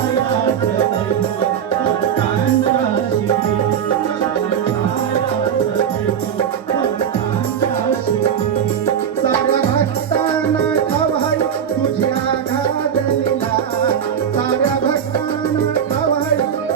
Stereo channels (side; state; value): left; quieter; 8.3 dB